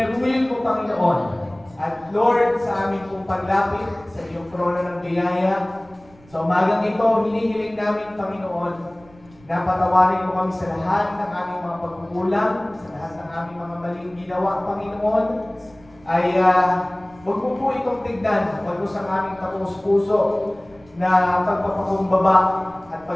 po, Panginoon. At Lord, sa aming pong paglapit sa iyong trono ng biyaya, sa umagang ito, hinihiling namin, Panginoon, na patawarin mo kami sa lahat ng aming mga pagkukulang, sa lahat ng aming mga maling ginawa, Panginoon, ay huwag mo po itong tignan, huwag mo sa aming tapos-puso na pagpapakumbaba at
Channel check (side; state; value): right; noise; rumble, 26 dB below the sound